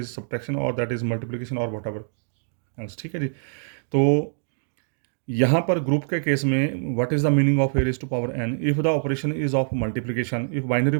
सब्ट्रैक्शन और दैट इज मल्टीप्लिकेशन और वट एवर एल्स, ठीक है जी। तो यहाँ पर ग्रुप के केस में what is the meaning of A raise to power n, if the operation is of multiplication, if binary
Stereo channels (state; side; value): silent; left; digital silence